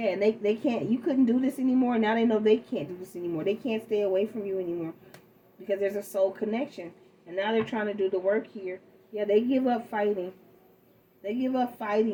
and they can't, you couldn't do this anymore. Now they know they can't do this anymore. They can't stay away from you anymore. Because there's a soul connection. And now they're trying to do the work here. Yeah, they give up fighting. They give up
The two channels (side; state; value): both; identical; correlation 1.00